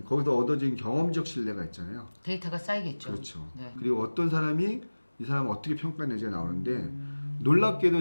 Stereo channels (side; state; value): both; inverted; correlation -1.00